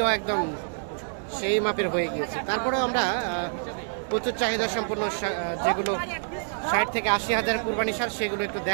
একদম সেই মাপের হয়ে গিয়েছে। তারপরেও আমরা প্রচুর চাহিদা সম্পন্ন যেগুলো 60 থেকে 80 হাজার কুরবানি সার, সেগুলো একটু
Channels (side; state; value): left; silent; digital silence